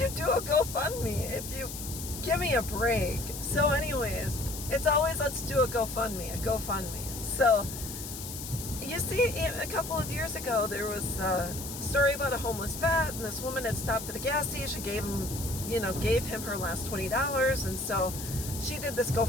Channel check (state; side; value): noise; left; hiss, 9 dB below the sound